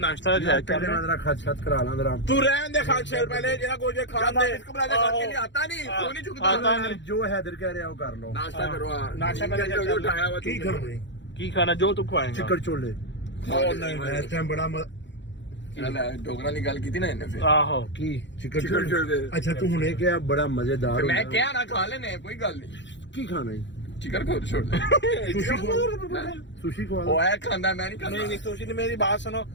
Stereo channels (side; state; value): right; late; 0.53 ms